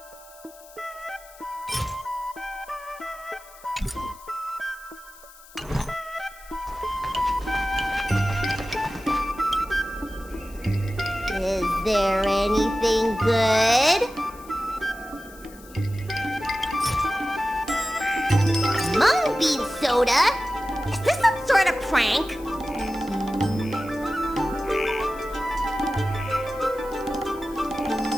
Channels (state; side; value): noise; left; hiss, 22 dB below the sound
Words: Is there anything good? Mung bean soda? Is this some sort of prank?